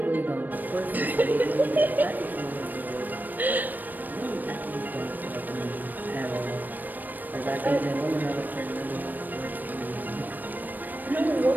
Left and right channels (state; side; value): late; left; 0.088 ms